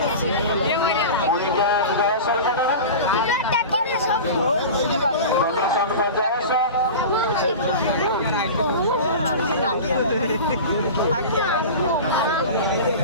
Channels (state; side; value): inverted; both; correlation -0.31